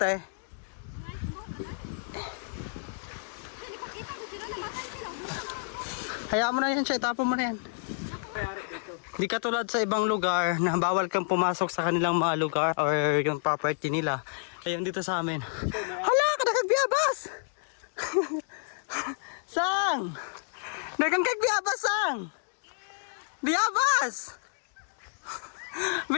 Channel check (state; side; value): silent; right; digital silence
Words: Hayaan mo na yan siya, itapon mo na yan. Di katulad sa ibang lugar na bawal kang pumasok sa kanilang mga lugar or yung property nila. Ayun dito sa amin. Hala, kadagbiabas! Sang! Dagang kagbiabas, Sang! Biabas!